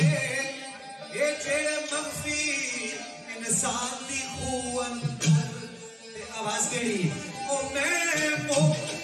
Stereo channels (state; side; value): identical; both; correlation 1.00